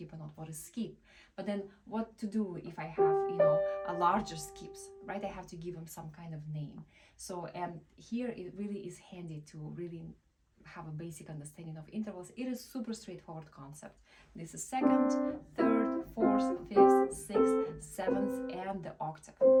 or not, what is skip. But then what to do if I have, a larger skips, right? I have to give them some kind of name. So, and here it really is handy to really have a basic understanding of intervals. It is super straightforward concept. This is second, third, fourth, fifth, sixth, seventh, and the octave.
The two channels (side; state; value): both; identical; correlation 1.00